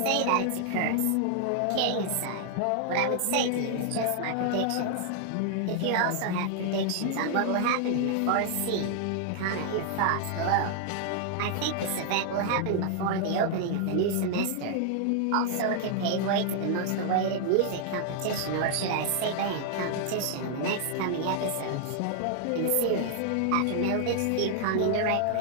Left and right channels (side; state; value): both; different; correlation 0.00